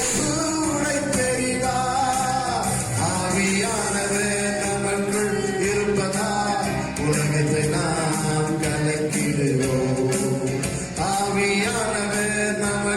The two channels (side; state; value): both; identical; correlation 1.00